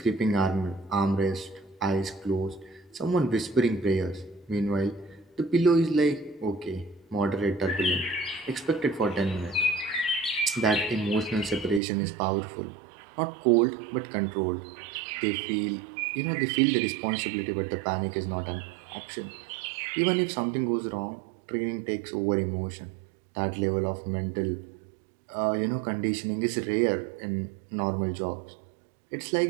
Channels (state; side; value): drops out; left; at 11.8 s